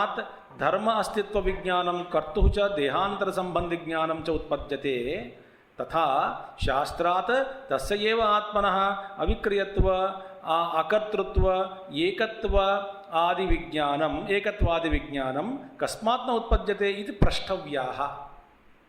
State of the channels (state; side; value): identical; both; correlation 1.00